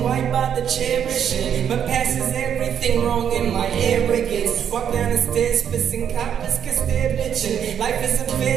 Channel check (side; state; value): left; quieter; 8.7 dB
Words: why bother cherishing? My past is everything wrong in my arrogance. Walk down the stairs, pissing coppers cause they're bitching. Life is a